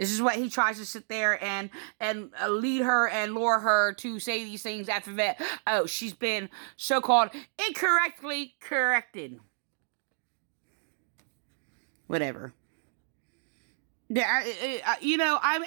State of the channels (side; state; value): left; silent; 58 dB below the other